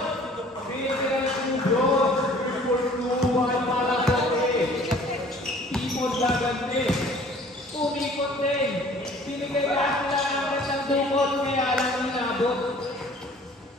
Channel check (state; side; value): normal; both; correlation 0.52